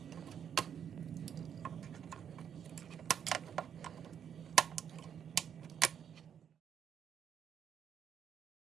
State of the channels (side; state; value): left; quieter; 8.4 dB